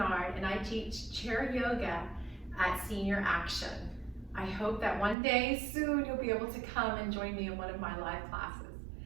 and I teach chair yoga at Senior Action. I hope that one day soon you'll be able to come and join me in one of my live classes.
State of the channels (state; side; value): drops out; left; at 5.2 s